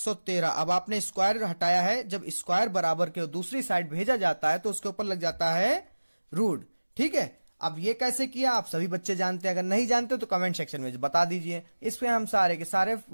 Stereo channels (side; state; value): both; inverted; correlation -1.00